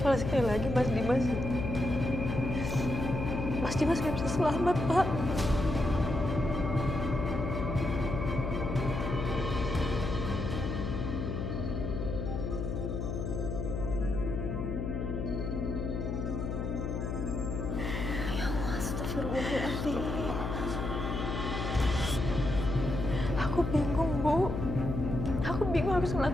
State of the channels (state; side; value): noise; left; hum, 2 dB below the sound